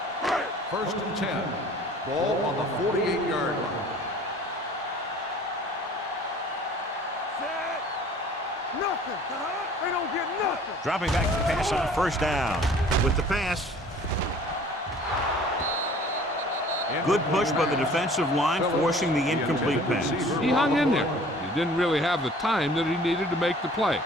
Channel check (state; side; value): normal; both; correlation 0.49